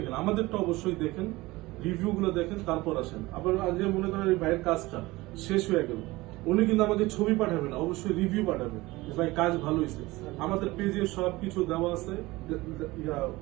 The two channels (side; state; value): left; quieter; 20.3 dB